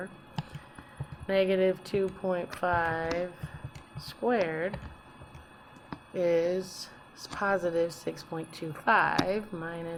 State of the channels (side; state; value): both; identical; correlation 1.00